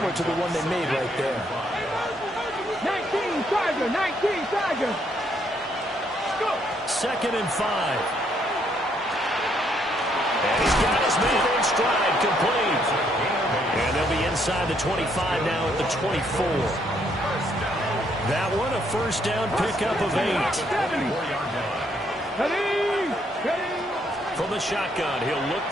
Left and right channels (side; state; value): both; normal; correlation 0.71